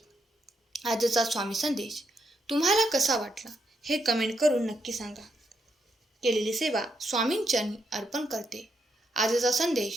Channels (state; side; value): normal; both; correlation 0.79